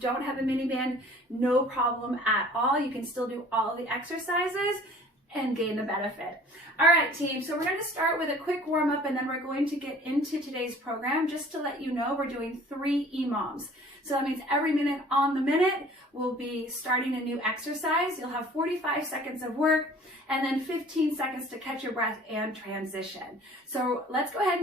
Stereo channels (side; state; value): both; normal; correlation 0.49